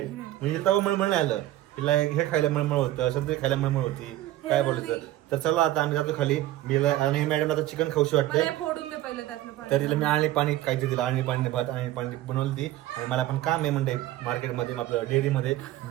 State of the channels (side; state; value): left; quieter; 14.9 dB